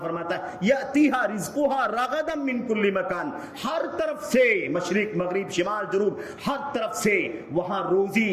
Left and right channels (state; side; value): identical; both; correlation 1.00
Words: فرماتا ہے یاتیھا رزقھا رغدا من کل مکان، ہر طرف سے، مشرق مغرب شمال جنوب، ہر طرف سے وہاں